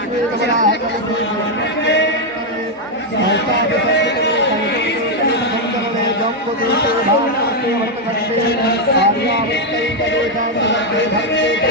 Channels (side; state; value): both; normal; correlation 0.02